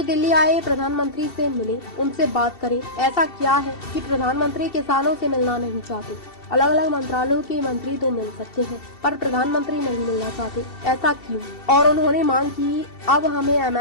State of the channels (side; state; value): right; late; 2.7 ms